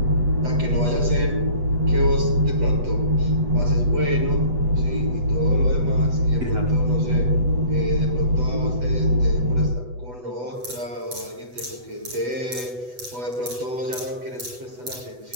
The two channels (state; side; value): late; left; 8.1 ms